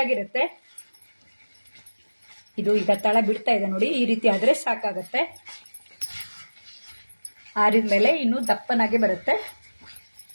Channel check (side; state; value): both; inverted; correlation -1.00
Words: ಇದು ಈಗ ತಳ ಬಿಡ್ತಾ ಇದೆ ನೋಡಿ, ಈ ರೀತಿ ಆದ್ರೆ ಸಾಕಾಗತ್ತೆ. ಆರಿದ್ಮೇಲೆ ಇನ್ನೂ ದಪ್ಪನಾಗೆ ಬರುತ್ತೆ.